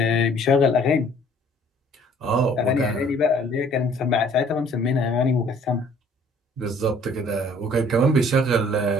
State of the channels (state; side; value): normal; both; correlation 0.57